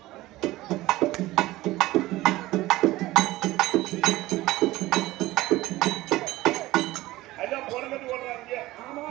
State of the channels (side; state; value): left; quieter; 17.7 dB